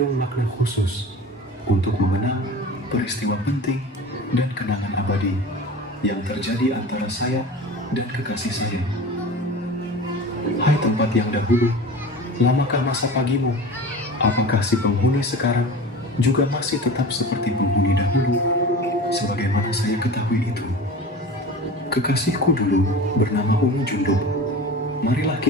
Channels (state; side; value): normal; both; correlation 0.35